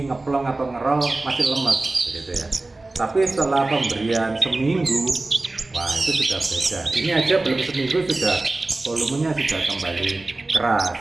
ngeplong atau ngerol masih lemes begitu ya. Tapi setelah pemberian seminggu, wah itu sudah beda. Ini aja belum seminggu sudah volumenya sudah kembali keras.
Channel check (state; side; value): quieter; left; 3.1 dB